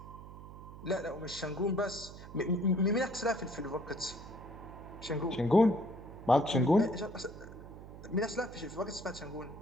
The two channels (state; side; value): noise; right; hum, 14 dB below the sound